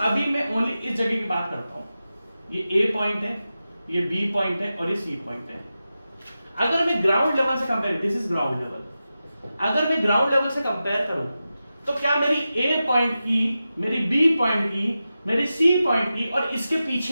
मैं ओनली इस जगह की बात करता हूं, ये A पॉइंट है, ये B पॉइंट है और ये C पॉइंट है। अगर मैं ग्राउंड लेवल से compare, this is ground level, अगर मैं ग्राउंड लेवल से कंपेयर करूं तो क्या मेरी A पॉइंट की, मेरी B पॉइंट की, मेरी C पॉइंट की और इसके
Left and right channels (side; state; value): both; inverted; correlation -0.92